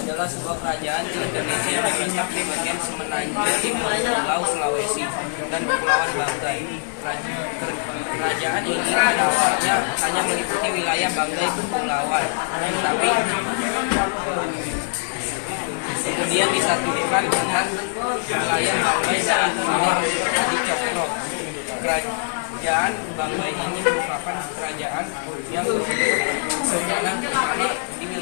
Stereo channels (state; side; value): silent; right; 63 dB below the other